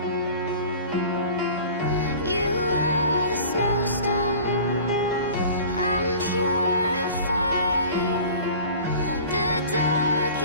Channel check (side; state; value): both; inverted; correlation -0.42